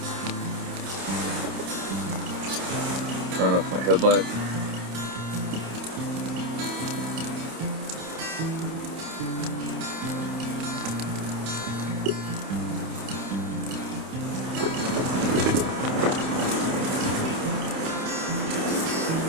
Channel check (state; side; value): late; left; 28 ms